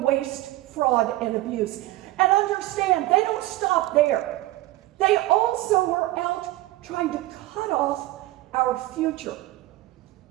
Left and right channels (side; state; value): left; quieter; 17.6 dB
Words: waste, fraud, and abuse. And understand, they don't stop there. They also are out trying to cut off our future.